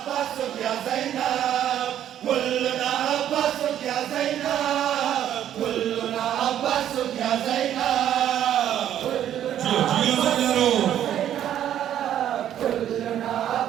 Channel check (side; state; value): left; quieter; 10.8 dB